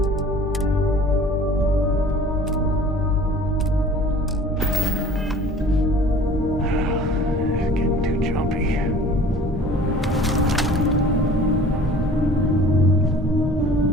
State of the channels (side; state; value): both; normal; correlation 0.47